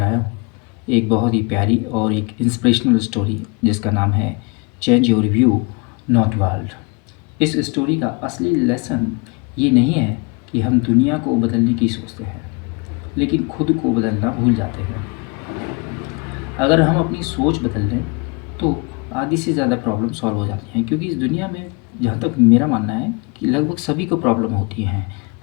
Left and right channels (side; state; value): right; quieter; 30.7 dB